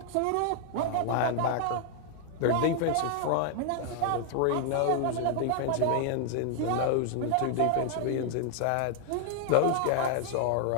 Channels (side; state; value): both; different; correlation 0.00